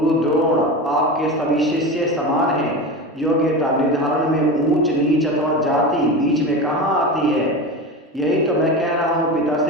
द्रोण आपके सभी शिष्य समान हैं। योग्यता निर्धारण में ऊंच नीच अथवा जाति बीच में कहाँ आती है? यही तो मैं कह रहा हूँ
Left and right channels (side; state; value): both; normal; correlation 0.26